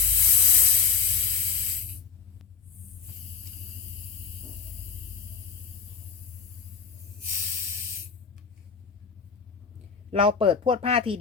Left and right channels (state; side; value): quieter; right; 6.0 dB